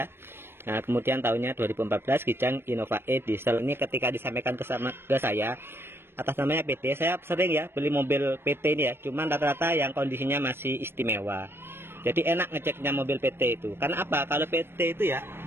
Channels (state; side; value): late; left; 0.11 ms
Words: Nah, kemudian tahunnya 2014, Kijang Innova E diesel. Ini ketika disampaikan ke saya, atas namanya PT. Saya sering ya beli mobil PT ini ya. Cuman rata-rata yang kondisinya masih istimewa. Jadi enak ngeceknya mobil PT itu. Karena apa? Kalau PT itu ya,